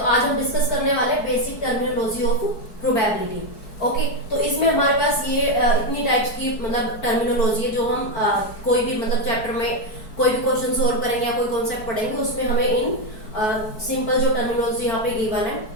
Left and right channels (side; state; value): right; late; 4.6 ms